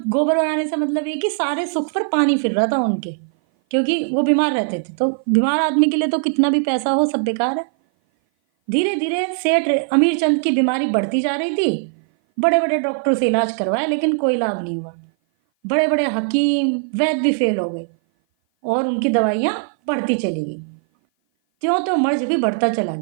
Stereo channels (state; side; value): silent; left; 57 dB below the other